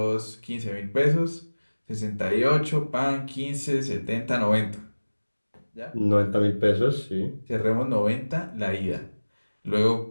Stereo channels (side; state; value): both; inverted; correlation -1.00